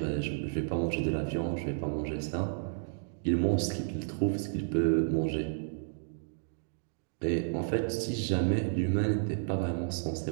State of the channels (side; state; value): left; silent; digital silence